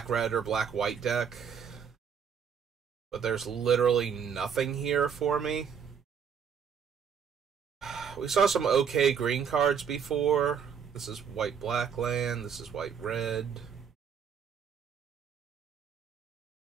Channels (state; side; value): quieter; left; 7.2 dB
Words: or black-white deck. But there's literally nothing here for me. We saw some okay green cards before. This is white-black land. This is white-red.